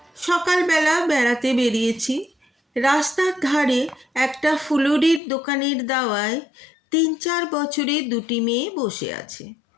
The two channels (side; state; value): right; drops out; at 5.2 s